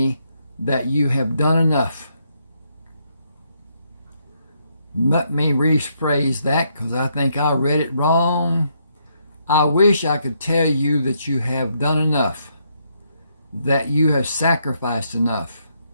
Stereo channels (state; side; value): inverted; both; correlation -0.75